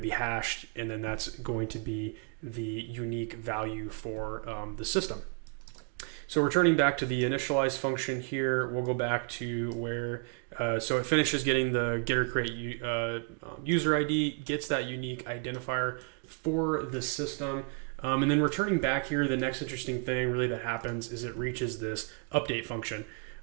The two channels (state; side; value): quieter; left; 33.5 dB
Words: hashed, and then that's going to be the unique value for the system. So returning back to the initialize function here, we'll go back to where, so it finishes getting the get or create user ID, gets that unique identifier for the system. And then returning back here, the next interesting thing really that happens is it reaches this update function.